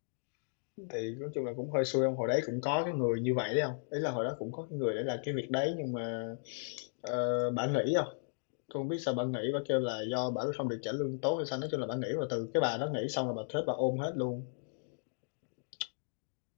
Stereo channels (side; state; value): right; silent; digital silence